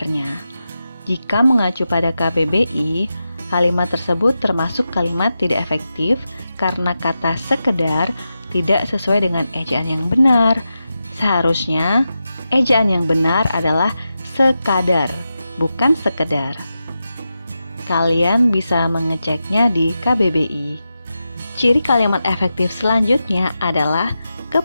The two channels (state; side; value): inverted; both; correlation -0.90